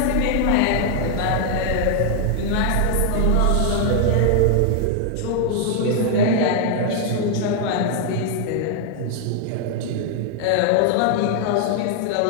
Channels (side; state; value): both; different; correlation 0.00